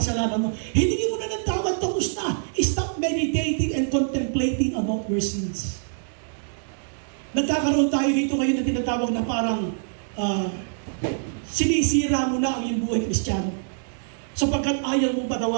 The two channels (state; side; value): silent; left; digital silence